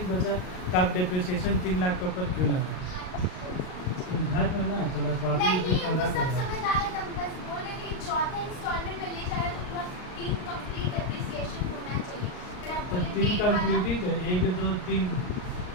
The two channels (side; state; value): right; late; 38 ms